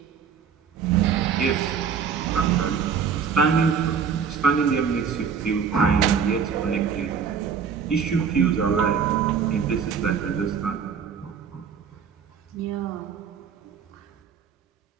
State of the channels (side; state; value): left; quieter; 6.8 dB